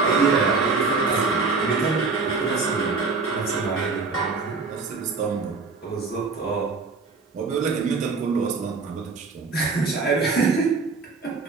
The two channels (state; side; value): quieter; left; 4.3 dB